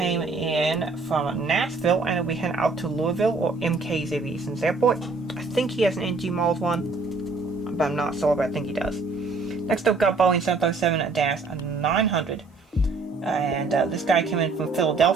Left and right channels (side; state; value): left; quieter; 3.8 dB